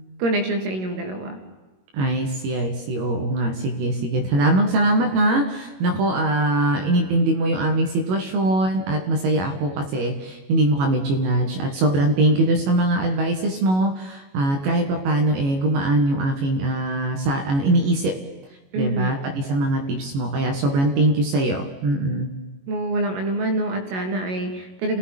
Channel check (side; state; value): left; late; 22 ms